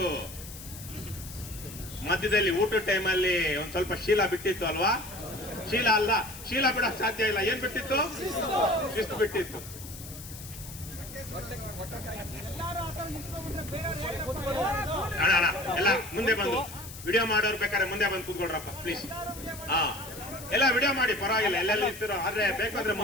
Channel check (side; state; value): left; noise; hiss, 14 dB below the sound